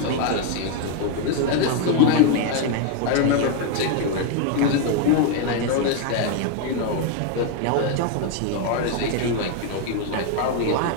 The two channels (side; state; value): both; different; correlation 0.00